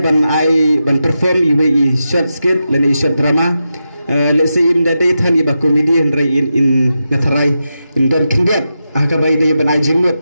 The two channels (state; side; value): inverted; both; correlation -0.89